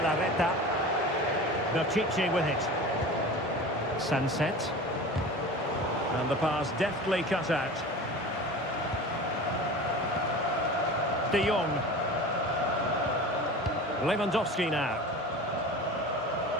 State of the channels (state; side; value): normal; both; correlation 0.35